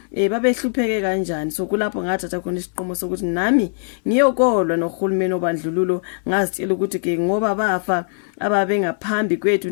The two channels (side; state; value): right; silent; digital silence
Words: babehlupheke kanjani. So kulapho ngathatha khona isiqomo sokuthi nami ngiyokolwa nohulumeni obandlululo, ngazitshela ukuthi ke ngoba bafa ababe ngaphambi kwethu